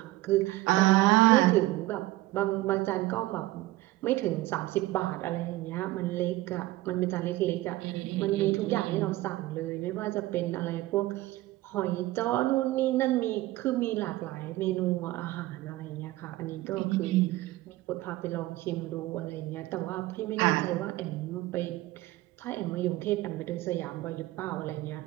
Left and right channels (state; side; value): quieter; left; 17.8 dB